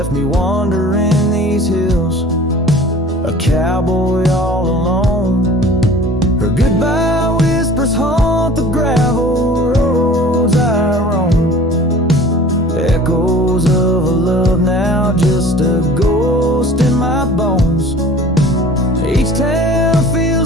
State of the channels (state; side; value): normal; both; correlation 0.45